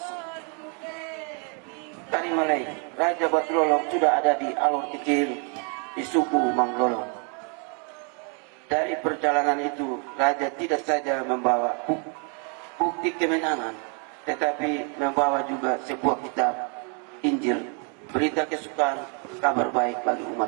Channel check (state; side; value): quieter; left; 38.5 dB